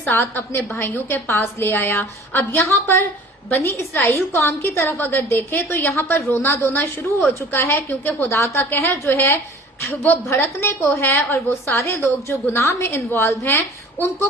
अपने भाइयों के पास ले आया। अब यहाँ पर बनी इसराइल कौम की तरफ अगर देखें तो यहाँ पर रोना धोना शुरू हो चुका है, क्योंकि खुदा का कहर जो है वो भड़कने को है और वो सारे लोग जो गुनाह में इन्वॉल्व हैं उनको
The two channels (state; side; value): normal; both; correlation 0.47